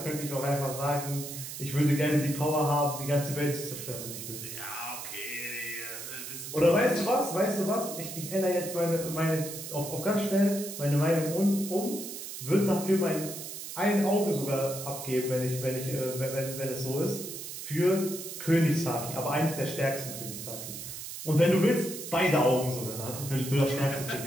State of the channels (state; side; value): noise; right; hiss, 9 dB below the sound